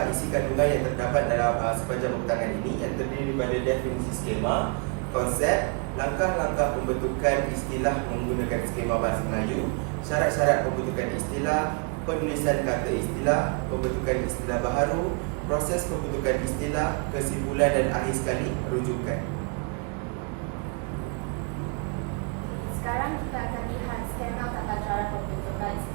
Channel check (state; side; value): quieter; left; 35.8 dB